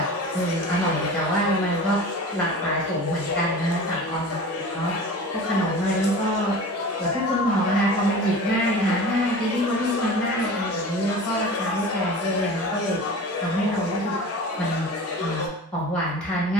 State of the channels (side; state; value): both; normal; correlation 0.36